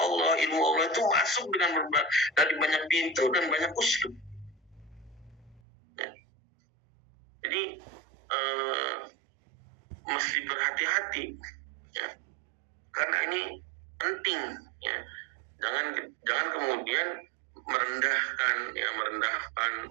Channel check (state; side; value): drops out; left; at 5.6 s